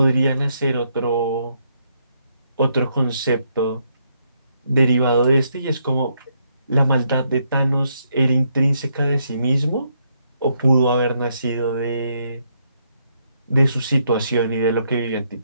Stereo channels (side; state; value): both; inverted; correlation -0.75